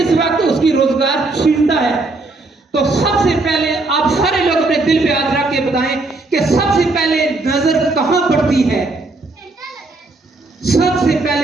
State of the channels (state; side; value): quieter; left; 3.3 dB